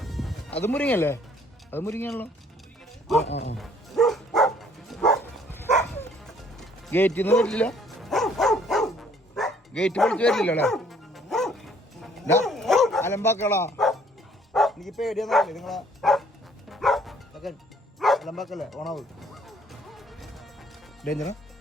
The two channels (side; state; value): both; normal; correlation 0.61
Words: അത് മുരിങ്ങല്ലേ? അത് മുരിങ്ങയാണല്ലോ. ഗേറ്റിൽ നിന്ന് വരില്ല, ഗേറ്റ് പൊളിച്ച് വരില്ലല്ലോ അല്ലേ? അലമ്പാക്കളാ, എനിക്ക് പേടിയാന്നല്ലേ നിങ്ങളെ അലമ്പാക്കല്ലേ? ഓണാവ് ഡേഞ്ചറാ.